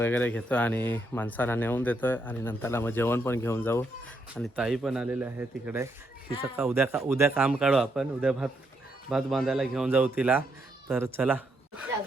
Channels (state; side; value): normal; both; correlation 0.77